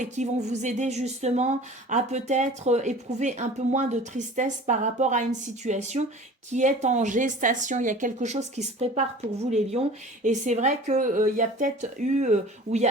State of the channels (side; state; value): both; normal; correlation 0.42